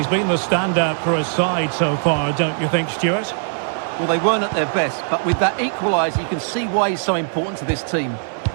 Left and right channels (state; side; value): silent; left; 66 dB below the other